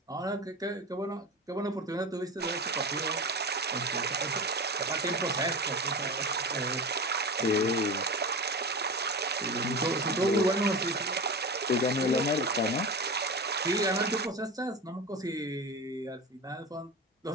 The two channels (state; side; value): normal; both; correlation 0.26